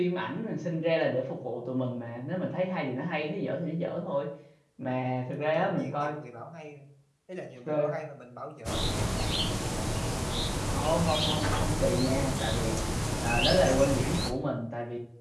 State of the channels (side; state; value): both; identical; correlation 1.00